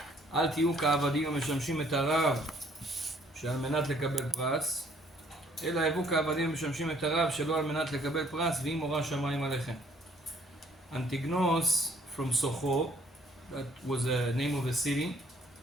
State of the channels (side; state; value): both; normal; correlation 0.62